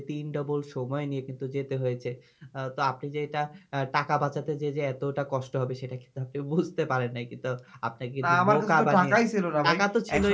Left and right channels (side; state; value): both; identical; correlation 1.00